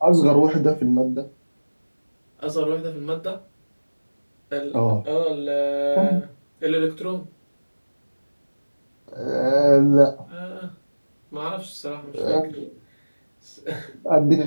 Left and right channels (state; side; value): inverted; both; correlation -1.00